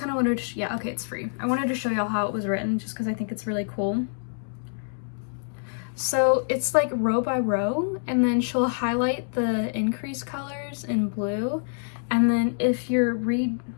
of wanted to, yeah, okay, it's free. I wanted to show y'all how it was written just because I think it's really cool. So it's like row by row, and then she'll highlight the increase colors in blue, and then if you're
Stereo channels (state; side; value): silent; right; digital silence